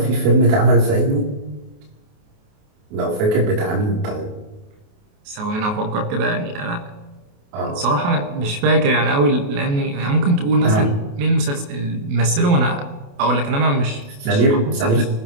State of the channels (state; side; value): late; left; 28 ms